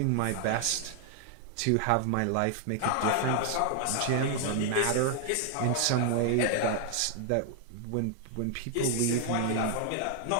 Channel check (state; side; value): different; both; correlation 0.00